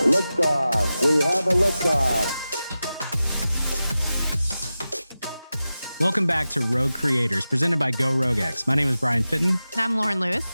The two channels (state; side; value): inverted; both; correlation -0.94